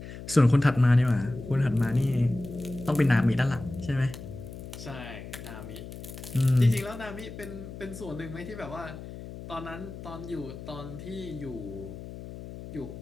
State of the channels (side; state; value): left; noise; hum, 12 dB below the sound